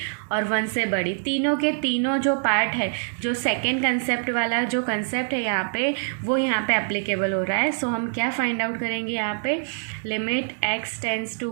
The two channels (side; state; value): left; silent; digital silence